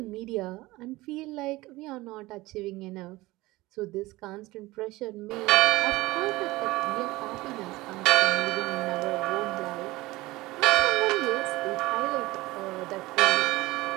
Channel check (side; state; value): left; quieter; 19.7 dB